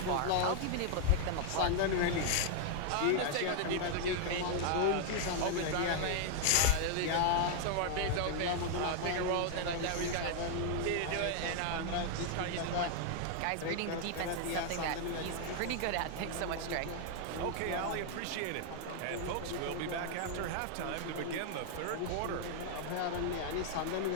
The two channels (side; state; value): both; different; correlation 0.00